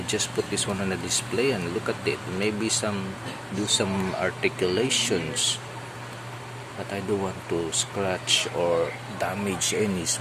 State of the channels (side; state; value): both; identical; correlation 1.00